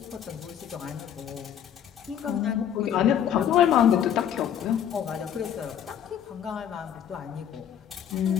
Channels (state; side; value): quieter; right; 9.5 dB